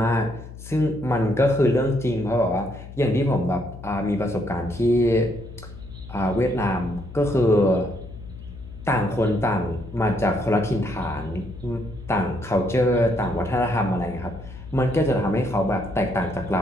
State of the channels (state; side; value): noise; left; hum, 14 dB below the sound